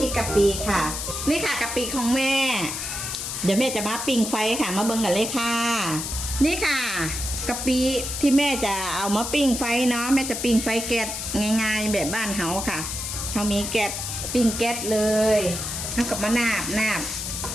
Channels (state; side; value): noise; left; hiss, 4 dB below the sound